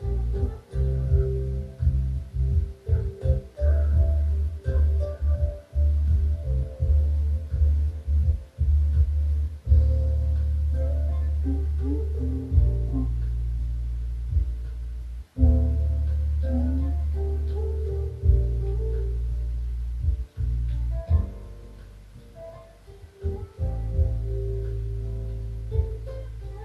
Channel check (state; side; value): identical; both; correlation 1.00